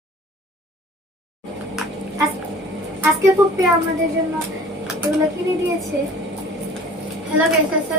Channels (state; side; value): normal; both; correlation 0.46